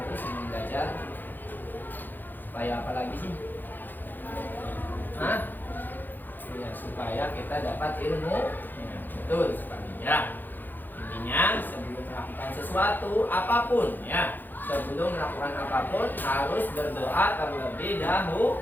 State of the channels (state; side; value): late; right; 0.088 ms